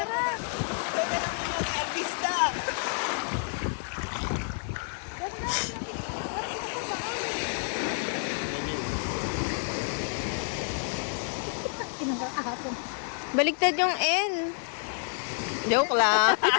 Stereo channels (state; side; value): silent; right; 58 dB below the other